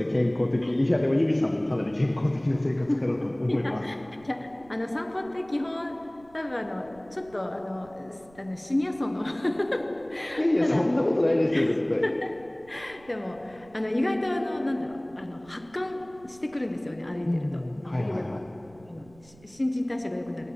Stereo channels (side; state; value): right; noise; rumble, 25 dB below the sound